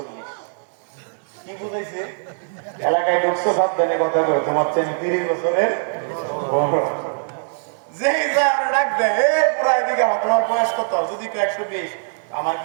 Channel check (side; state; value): left; silent; digital silence